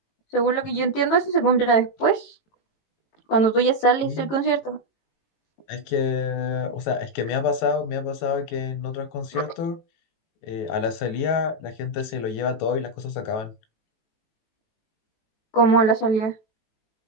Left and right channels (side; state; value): right; late; 18 ms